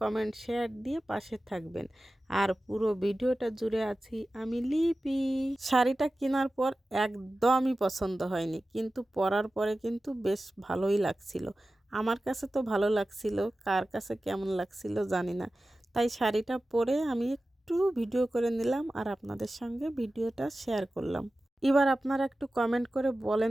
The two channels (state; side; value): normal; both; correlation 0.95